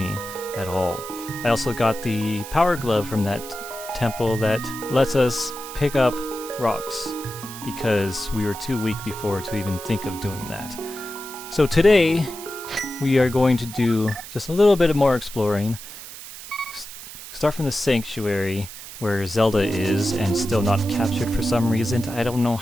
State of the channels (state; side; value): noise; right; hiss, 13 dB below the sound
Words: at all. I also got the Power Glove from that temple that lets us pick up rocks because we were too weak before to even think of doing that. So today, we are going to do just a little bit more exploring. Start from the sanctuary where Zelda is and still not captured for some reason. I don't know